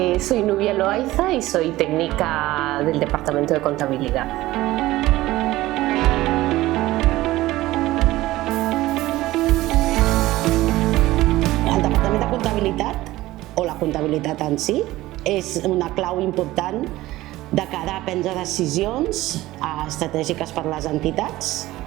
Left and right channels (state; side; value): quieter; left; 17.2 dB